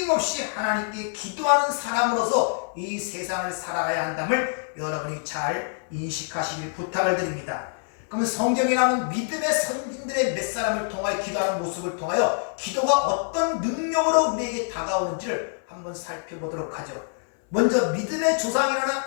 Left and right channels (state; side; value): silent; right; 59 dB below the other